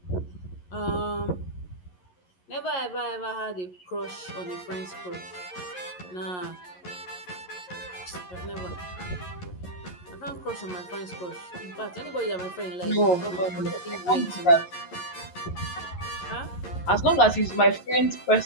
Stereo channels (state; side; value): late; right; 11 ms